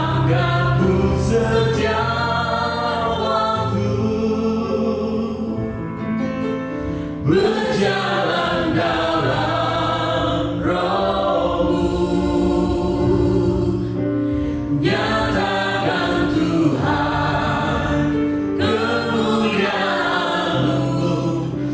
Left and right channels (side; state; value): both; identical; correlation 1.00